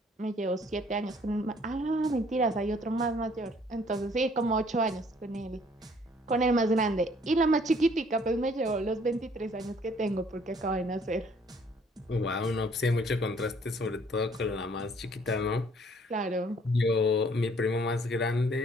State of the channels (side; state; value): both; normal; correlation 0.60